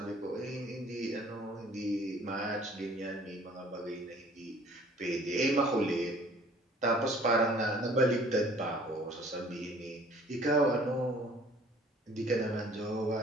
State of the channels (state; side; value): normal; both; correlation 0.53